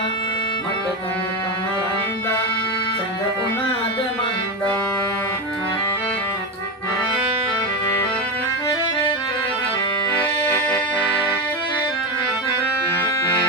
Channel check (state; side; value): normal; both; correlation 0.15